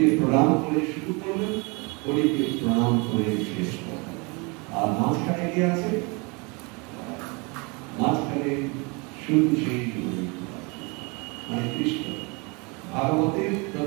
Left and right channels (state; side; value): quieter; left; 29.9 dB